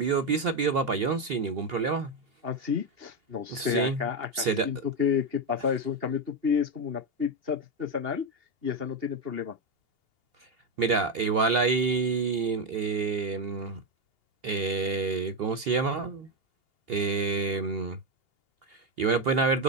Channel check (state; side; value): late; left; 2.8 ms